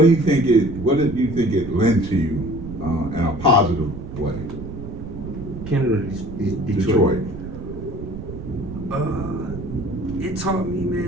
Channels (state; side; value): noise; right; rumble, 10 dB below the sound